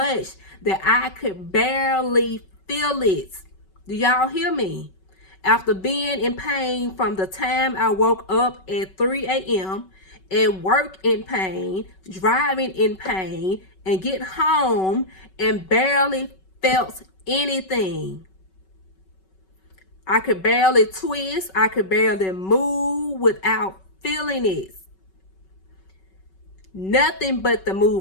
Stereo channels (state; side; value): late; right; 5.3 ms